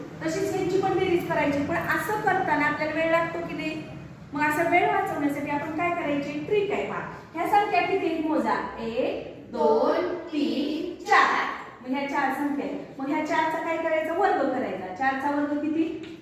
तशीच यांची पण बेरीज करायची. पण असं करताना आपल्याला वेळ लागतो की नाही? मग असा वेळ वाचवण्यासाठी आपण काय करायचे? ट्रिक आहे. पहा, ह्या संख्या किती मोजा? 1 2 3 4. मग ह्या 4 संख्या आहेत. मग ह्या 4चा काय करायचं? वर्ग करायचा. 4चा वर्ग किती?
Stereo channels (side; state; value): both; identical; correlation 1.00